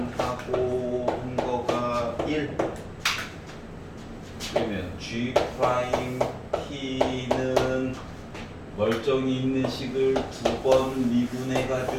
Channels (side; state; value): both; identical; correlation 1.00